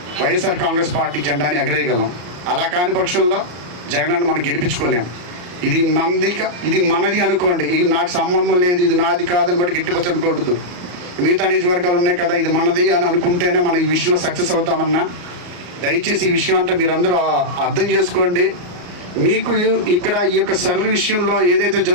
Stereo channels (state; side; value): late; left; 34 ms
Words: వైఎస్ఆర్ కాంగ్రెస్ పార్టీ జెండాని ఎగరేయగలం. అలా కాని పక్షంలో జగనన్న మనం గెలిపించుకోలేం. ఇది ఇది మనది అనుకోండి, ఇది నాకు సంబంధం లేదు, ఇది నాది కాదని బట్టి గట్టిపచ్చి అనుకోవద్దు. మిగతా నియోజకవర్గాలు ఉన్నాయి కదా, ఇది మనది అని అనుకుంటేనే మనం ఈ విషయంలో సక్సెస్ అవుతామన్నా. దయచేసి ఈ విషయం అంటే మీరందరూ అర్థం చేసుకోండి. మీకు ఇక్కడ ఈ యొక్క సర్వే విషయంలో ఏదైతే